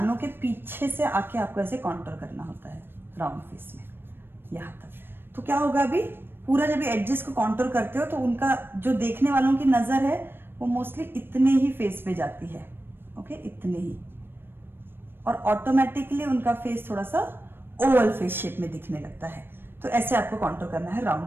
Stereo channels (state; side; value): late; left; 0.10 ms